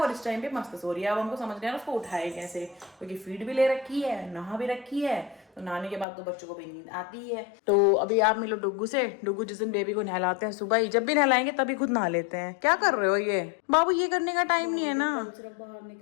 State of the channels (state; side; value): drops out; right; at 6.1 s